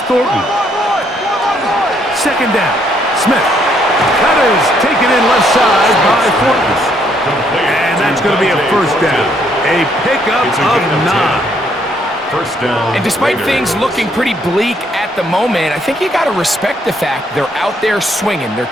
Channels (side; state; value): both; normal; correlation 0.70